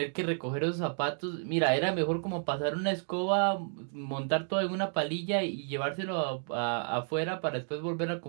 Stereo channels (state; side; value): silent; left; 57 dB below the other